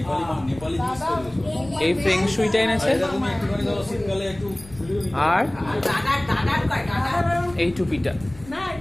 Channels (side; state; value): left; noise; rumble, 19 dB below the sound